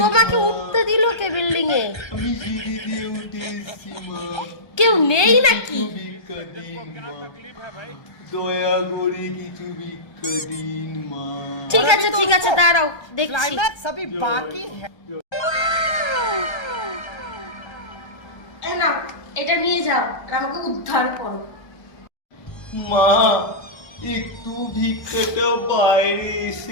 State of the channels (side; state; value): right; late; 1.3 ms